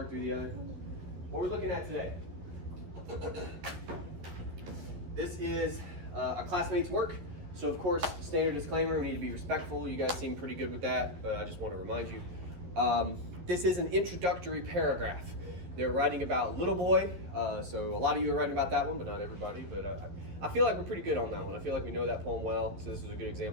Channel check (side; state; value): left; late; 12 ms